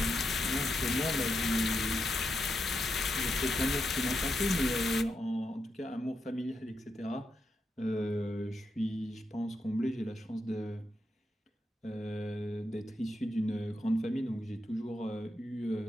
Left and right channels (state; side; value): normal; both; correlation 0.84